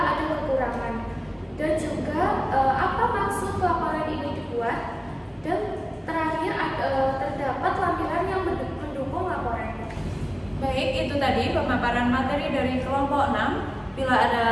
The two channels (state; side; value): identical; both; correlation 1.00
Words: ada kekurangan. Dan juga apa maksud laporan ini dibuat, dan terakhir terdapat lampiran yang mendukung laporan. Baik, itu tadi pemaparan materi dari kelompok 6. Bila